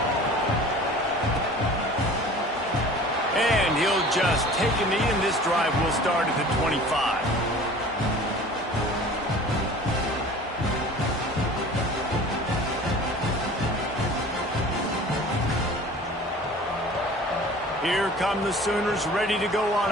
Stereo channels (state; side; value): normal; both; correlation 0.44